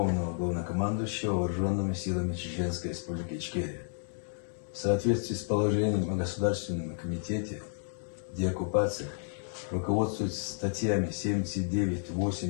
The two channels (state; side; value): silent; right; digital silence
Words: Главнокомандующего Вооруженными силами Чеченской Республики Ичкерия. В соответствии с положением о Государственном комитете деоккупации, руководствуясь статьями 79,